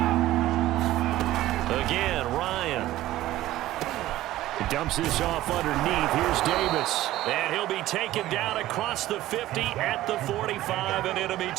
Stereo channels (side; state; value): left; quieter; 15.2 dB